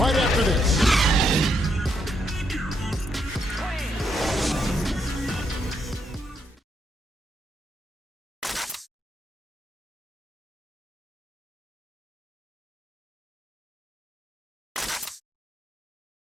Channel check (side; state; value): both; normal; correlation 0.77